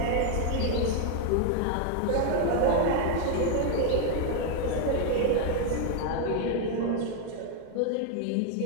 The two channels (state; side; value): different; both; correlation 0.01